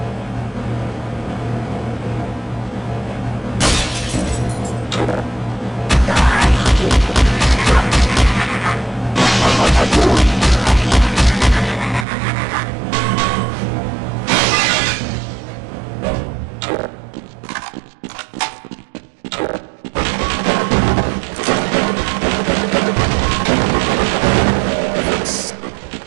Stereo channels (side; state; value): left; drops out; at 12.1 s